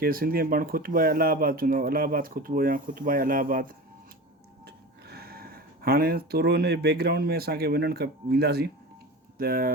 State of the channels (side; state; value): both; normal; correlation 0.31